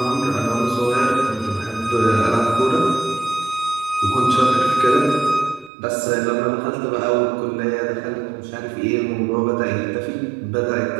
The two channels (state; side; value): drops out; left; at 5.7 s